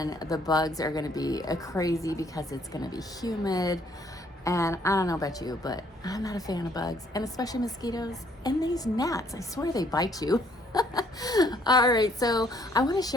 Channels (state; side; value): normal; both; correlation 0.65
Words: the bugs are going to be crazy because it's going to be humid. And I don't know about you, but I'm not a fan of bugs, and especially mosquitoes and these gnats. I swear they bite you. All right, so I want to